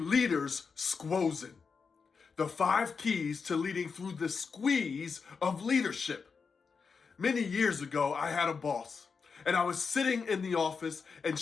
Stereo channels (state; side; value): quieter; right; 5.3 dB